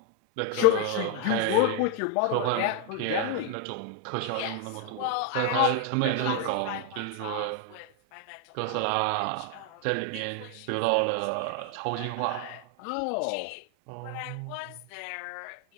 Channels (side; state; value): both; different; correlation 0.00